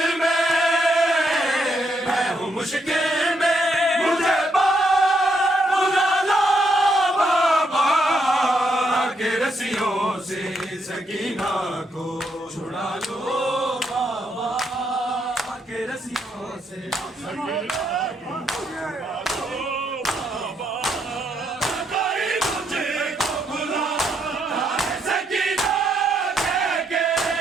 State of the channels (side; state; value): both; normal; correlation 0.77